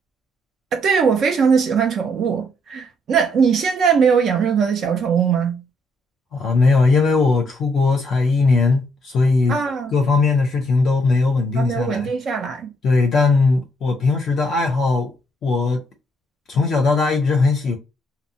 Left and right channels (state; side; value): normal; both; correlation 0.72